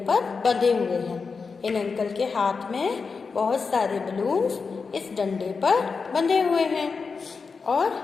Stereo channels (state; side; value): quieter; right; 4.9 dB